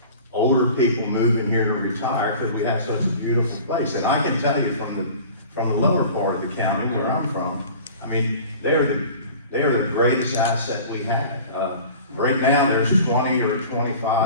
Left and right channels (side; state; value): both; inverted; correlation -0.42